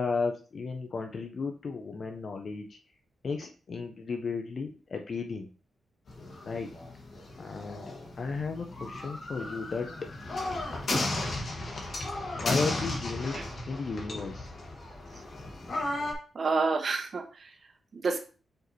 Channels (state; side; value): normal; both; correlation 0.86